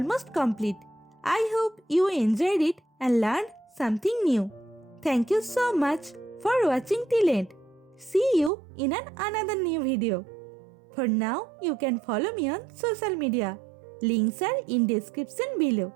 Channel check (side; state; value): left; drops out; at 8.5 s